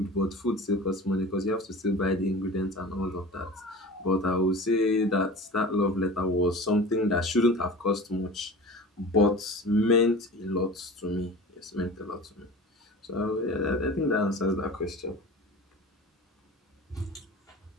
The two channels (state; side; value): normal; both; correlation 0.37